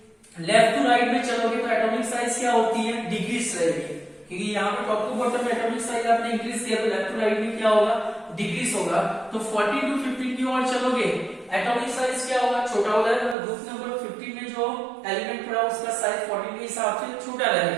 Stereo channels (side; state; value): left; drops out; at 13.4 s